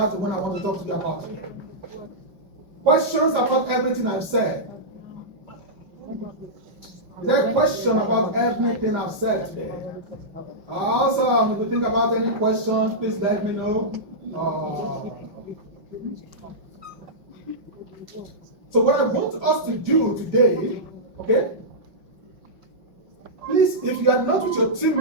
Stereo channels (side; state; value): left; late; 5.7 ms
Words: the one I want to talk to you about. Questions about everything I've said? Is there a question about everything I've said today? Awesome. If you think about any questions, please let me know. So what I want us to do today, okay? Please, if you are not with your team